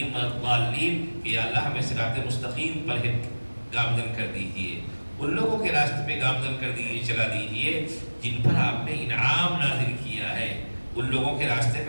ولا الضالین، کہ یا اللہ ہمیں صراط مستقیم پر گامزن کر دیجئے، ان لوگوں کے راستے پہ گامزن کر دیجئے، چلا دیجئے جن پر آپ نے انعام نازل کیا ہے. ان لوگوں کے راستے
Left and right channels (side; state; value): both; inverted; correlation -1.00